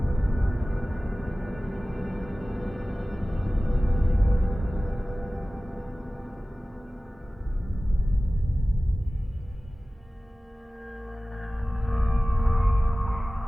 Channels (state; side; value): normal; both; correlation 0.97